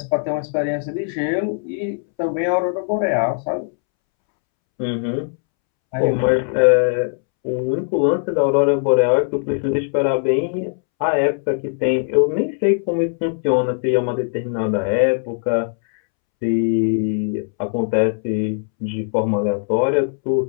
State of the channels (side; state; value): right; silent; 66 dB below the other